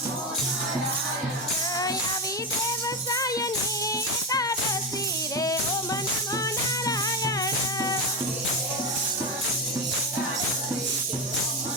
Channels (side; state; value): both; normal; correlation 0.15